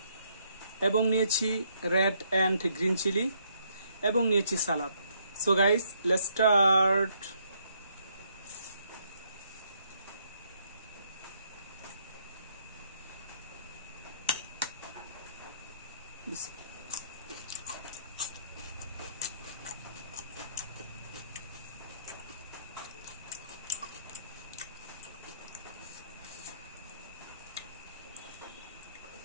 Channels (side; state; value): both; inverted; correlation -0.71